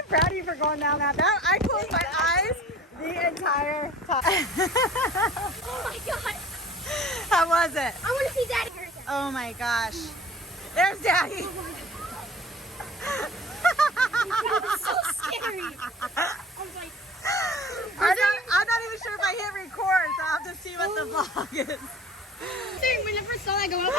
proud of you for going down that. I closed my eyes the entire time. Oh my god! How was it? I want to see Daddy. Oh my gosh. There's Daddy. It's so scary. I was like, I'm not even sure if I hit record, so I'll have to see what the vlog is. when I first saw that go up,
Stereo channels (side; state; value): both; normal; correlation 0.44